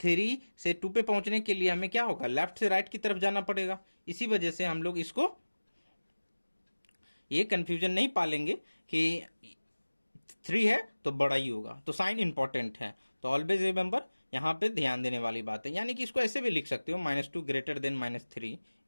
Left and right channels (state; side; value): inverted; both; correlation -1.00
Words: से 2 पे पहुंचने के लिए हमें क्या होगा, लेफ्ट से राइट की तरफ जाना पड़ेगा। इसी वजह से हम लोग इसको ये कंफ्यूजन नहीं पालेंगे कि 3 है तो बड़ा ही होगा। तो साइन इंपॉर्टेंट है, तो ऑलवेज रिमेंबर, यहाँ पे ध्यान देने वाली बात है। यानी कि इसको ऐसे भी लिख सकते हो, -2 > -3,